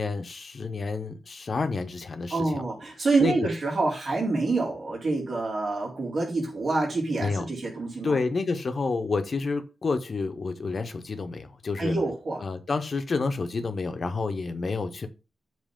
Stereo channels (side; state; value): both; normal; correlation 0.87